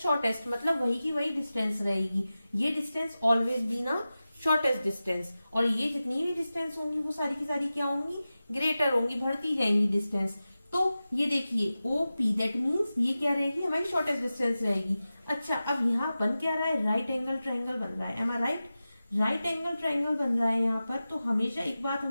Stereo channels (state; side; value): inverted; both; correlation -0.95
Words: मतलब वही की वही डिस्टेंस रहेगी। ये डिस्टेंस ऑलवेज बी ना शॉर्टेस्ट डिस्टेंस, और ये जितनी भी डिस्टेंस होंगी वो सारी की सारी क्या होंगी, ग्रेटर होंगी, बढ़ती जाएंगी डिस्टेंस। तो ये देखिए ओ पी, दैट मीन्स ये क्या रहेगी, हमारी शॉर्टेस्ट डिस्टेंस रहेगी। अच्छा, अब यहाँ बन क्या रहा है, राइट एंगल ट्राइंगल बन रहा है। एम आई राइट? राइट एंगल ट्राइंगल बन रहा है यहाँ पर। तो हमेशा एक बात